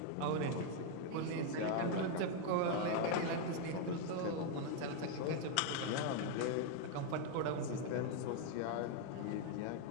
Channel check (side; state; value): both; different; correlation 0.01